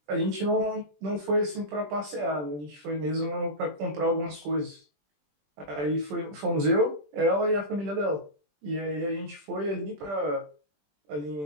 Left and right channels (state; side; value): late; left; 20 ms